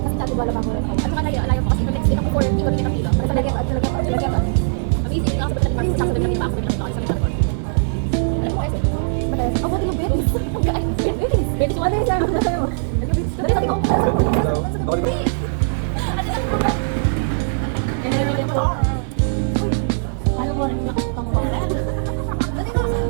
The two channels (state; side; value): silent; left; digital silence